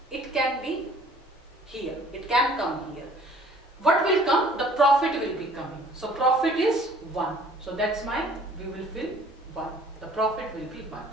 it can be here, it can come here. What will come? The profit will be coming. So profit is 1. So that's we will fill 1. The profit will be 1.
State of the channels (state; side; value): normal; both; correlation 0.54